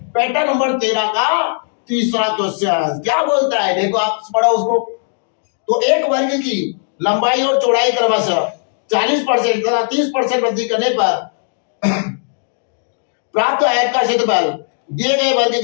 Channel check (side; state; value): right; silent; 66 dB below the other